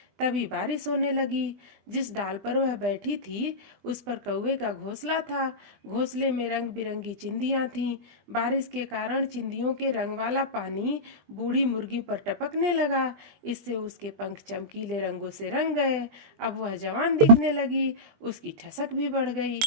तभी बारिश होने लगी। जिस डाल पर वह बैठी थी उस पर कौवे का घोंसला था। घोंसले में रंग बिरंगी चिंदियां थीं। बारिश के कारण चिंदियों के रंग वाला पानी बूढ़ी मुर्गी पर टपकने लगा। इससे उसके पंख चमकीले रंगों से रंग गए। अब वह जवान दिखने लगी। उसकी ठसक भी बढ़ गई।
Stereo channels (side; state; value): left; late; 20 ms